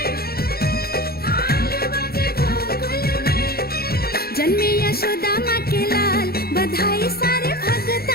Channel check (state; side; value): late; right; 0.45 ms